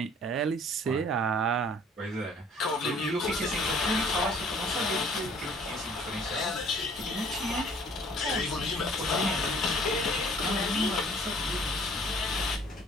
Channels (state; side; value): normal; both; correlation 0.55